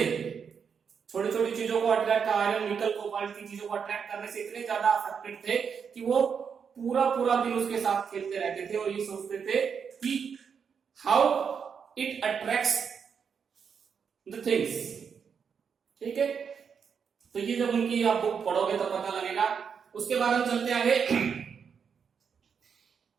छोटी छोटी चीजों को अट्रैक्ट, आयरन निकल कोबाल्ट की चीजों को अट्रैक्ट करने से इतने ज्यादा अफेक्टेड थे कि वो पूरा पूरा दिन उसके साथ खेलते रहते थे और ये सोचते थे कि how it attracts the things. ठीक है, तो ये जब उनकी आप बुक पढ़ोगे तो पता लगेगा। उसके बाद हम चलते आगे।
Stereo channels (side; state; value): left; quieter; 6.7 dB